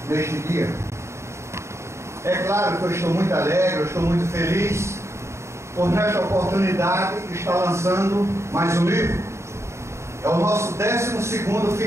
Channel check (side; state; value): left; late; 0.13 ms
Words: neste dia. É claro que eu estou muito alegre, eu estou muito feliz por nesta oportunidade estar lançando mais um livro. É o nosso 12º